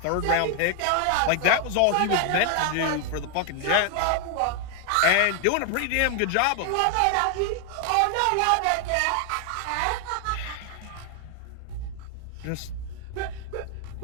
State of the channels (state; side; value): different; both; correlation 0.00